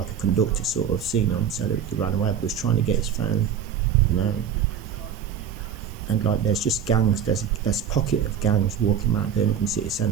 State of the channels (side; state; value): left; quieter; 8.0 dB